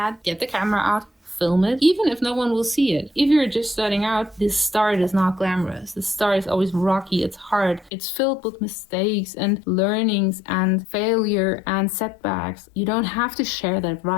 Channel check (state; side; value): drops out; right; at 7.9 s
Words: get the camera out, film it, even if no one will see it. If you're just starting out, this start is not glamorous. The start is always rocky, it's hard, it's filled with mistakes and learnings and failure and setbacks. You don't have to share that